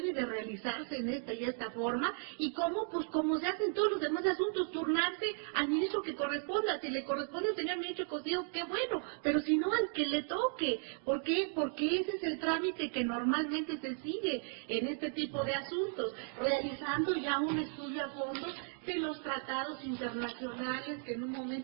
de realizarse en esta y esta forma, y cómo, pues como se hacen todos los demás asuntos, turnarse al ministro que corresponda. Si le corresponde al señor ministro Cosío, qué bueno, pero si no, al que le toque. ¿Por qué? Porque ese es el trámite que normalmente se sigue en este tipo de asuntos, realizando ya un estudio a fondo de los tratados internacionales que en un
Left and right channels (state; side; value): silent; left; 54 dB below the other